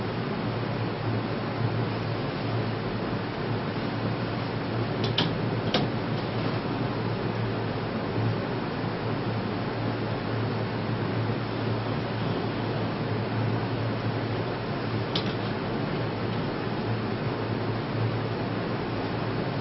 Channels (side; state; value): both; identical; correlation 1.00